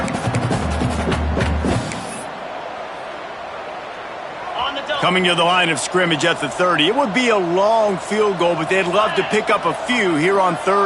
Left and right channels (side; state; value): both; identical; correlation 1.00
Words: Coming to the line of scrimmage at the 30. It would be a long field goal, but they'd love to pick up a few here on